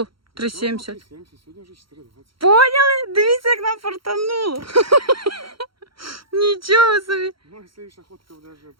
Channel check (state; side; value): late; left; 0.74 ms